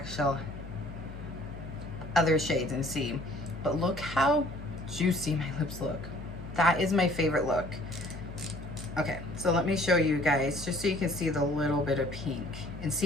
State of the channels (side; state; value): left; noise; hum, 12 dB below the sound